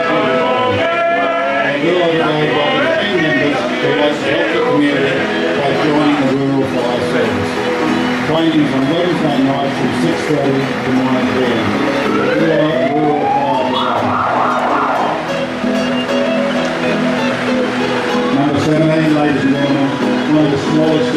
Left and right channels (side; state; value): both; identical; correlation 1.00